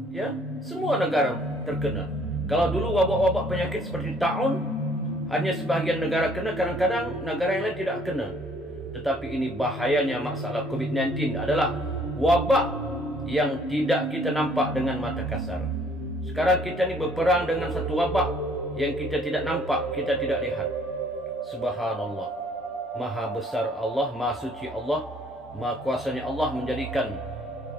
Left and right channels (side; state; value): both; normal; correlation 0.60